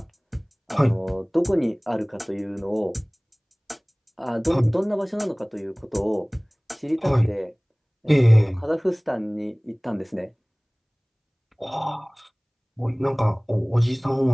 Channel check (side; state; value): both; identical; correlation 1.00